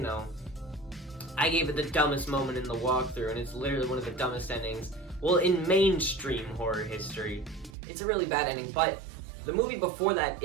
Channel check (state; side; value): drops out; left; at 7.8 s